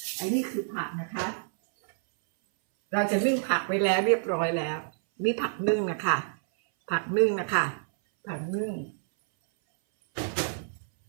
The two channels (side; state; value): left; silent; 58 dB below the other